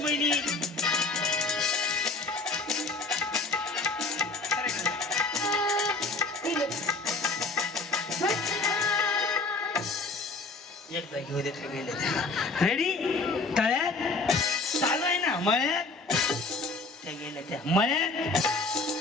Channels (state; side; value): quieter; right; 3.6 dB